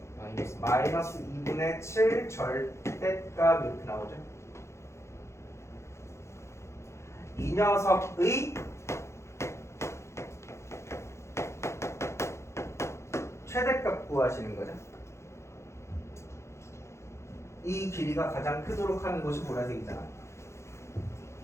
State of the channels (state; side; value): late; right; 0.13 ms